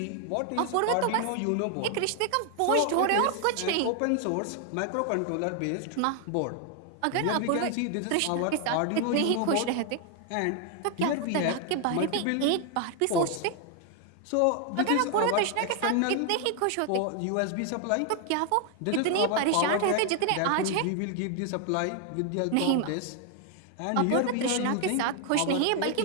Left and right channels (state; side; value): different; both; correlation 0.00